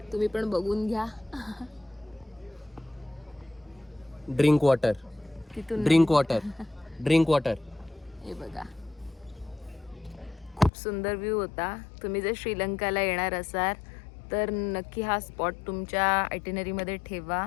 तुम्ही पण बघून घ्या. ड्रिंक वॉटर, तिथून ड्रिंक वॉटर, ड्रिंक वॉटर. हे बघा, खूप सुंदर व्ह्यू होता. तुम्ही जर श्रीलंकाला येणार असाल तर नक्की हा स्पॉट तुमच्या आयटिनरीमध्ये ठेवा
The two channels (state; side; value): drops out; right; at 10.7 s